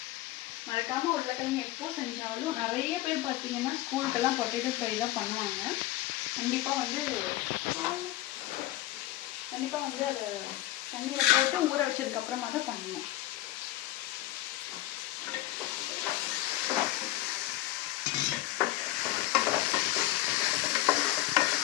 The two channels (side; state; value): right; quieter; 16.4 dB